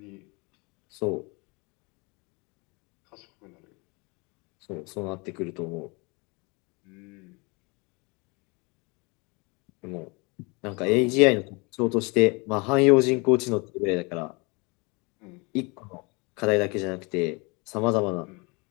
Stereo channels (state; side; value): quieter; right; 28.7 dB